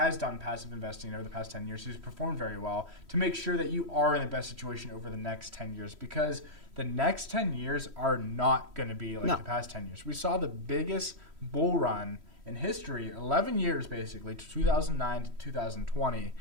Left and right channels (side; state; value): left; late; 3.1 ms